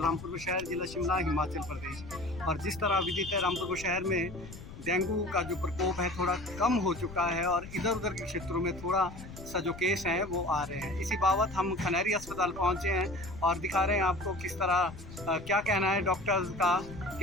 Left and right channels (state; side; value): noise; left; rumble, 14 dB below the sound